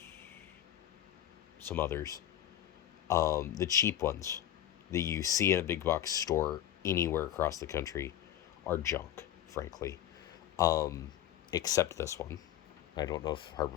some others. The cheap ones that you see in a big box store anywhere across the country are junk, frankly. Um, except this one. I don't know if Harbor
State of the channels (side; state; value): right; quieter; 11.7 dB